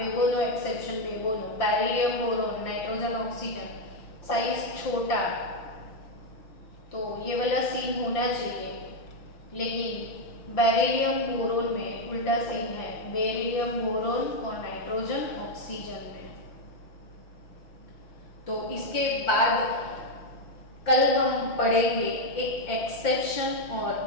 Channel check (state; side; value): late; right; 5.8 ms